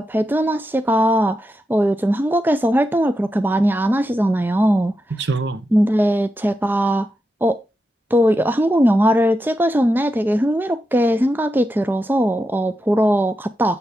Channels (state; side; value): normal; both; correlation 0.88